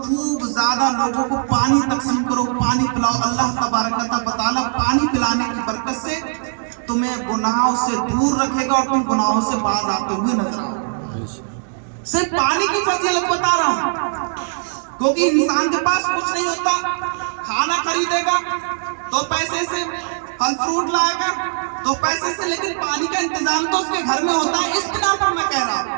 زیادہ لوگوں کو پانی تقسیم کرو، پانی پلاؤ۔ اللہ تبارک و تعالیٰ پانی پلانے کی برکت سے تمہیں گناہوں سے دور رکھے گا اور تم گناہوں سے باز آتے ہوئے نظر آؤ۔ صرف پانی کی فضیلت بتا رہا ہوں، کیونکہ انسان کے پاس کچھ نہیں ہوتا، کھانا خریدے گا تو پیسے سے، پھل فروٹ لائے گا تو پیسے سے، لیکن پانی کا انتظام تو اس کے گھر میں ہوتا ہے۔ اس بنا پر میں کہہ رہا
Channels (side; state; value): left; silent; 66 dB below the other